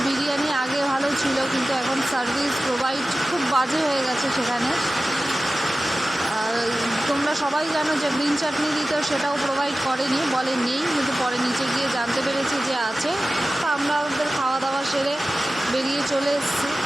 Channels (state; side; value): normal; both; correlation 0.95